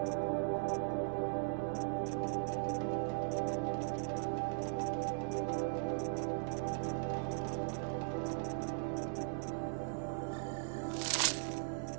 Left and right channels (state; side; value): silent; left; digital silence